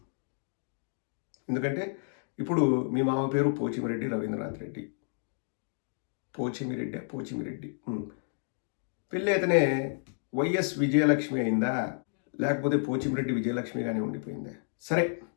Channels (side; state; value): right; silent; digital silence